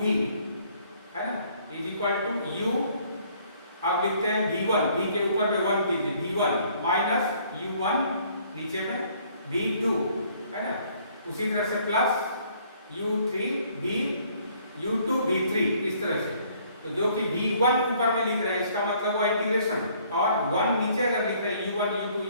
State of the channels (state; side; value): inverted; both; correlation -0.61